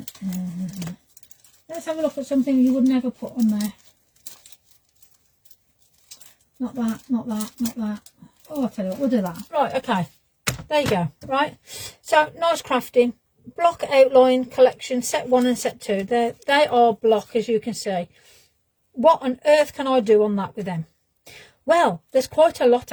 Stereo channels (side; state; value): both; identical; correlation 1.00